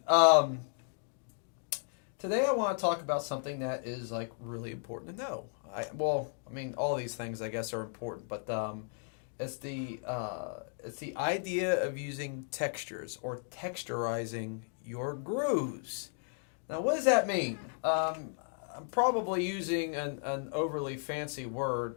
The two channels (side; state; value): right; silent; 55 dB below the other